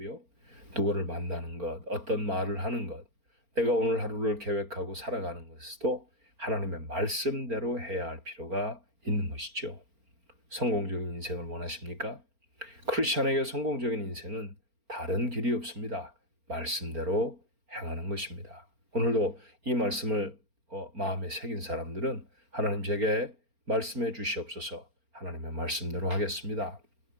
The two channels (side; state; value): left; late; 4.4 ms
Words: 누구를 만나는 것, 어떤 말을 하는 것, 내가 오늘 하루를 계획하고 살아가는 것도 하나님의 말씀대로 해야 할 필요가 있는 것이죠. 성공적인 인생을 원하십니까? 크리스찬에게 성공적인 인생은 다른 길이 없습니다. 말씀대로 행하는 것입니다. 오늘도 이 말씀을 마음에 새긴 사람들은 하나님 제게 말씀해 주시옵소서. 하나님의 말씀대로 하겠습니다.